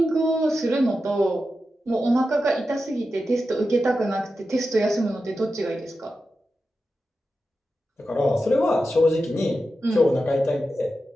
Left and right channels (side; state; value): both; normal; correlation 0.91